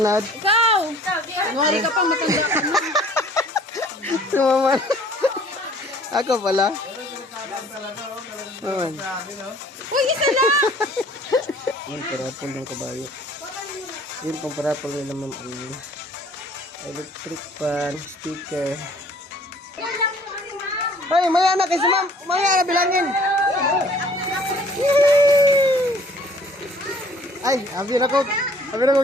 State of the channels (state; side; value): normal; both; correlation 0.54